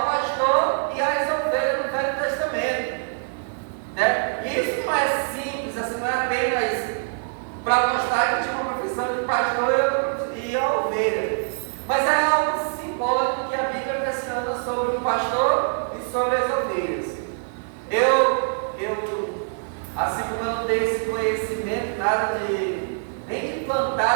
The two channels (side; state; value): left; silent; digital silence